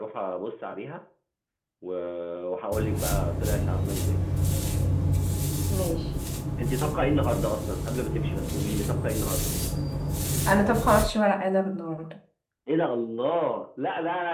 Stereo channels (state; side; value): identical; both; correlation 1.00